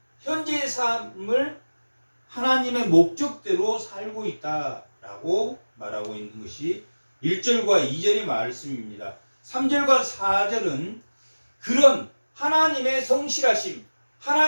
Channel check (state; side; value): inverted; both; correlation -1.00